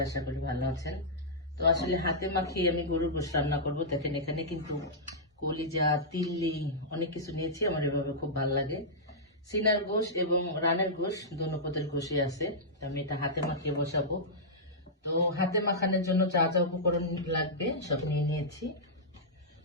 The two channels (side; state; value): both; normal; correlation -0.11